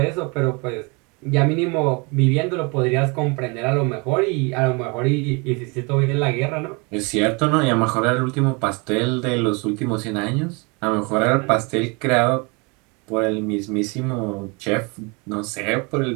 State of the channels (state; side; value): quieter; left; 30.0 dB